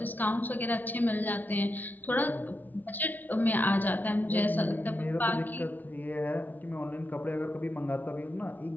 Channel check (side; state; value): right; late; 0.082 ms